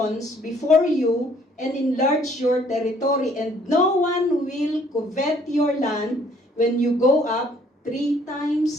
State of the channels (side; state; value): both; normal; correlation 0.61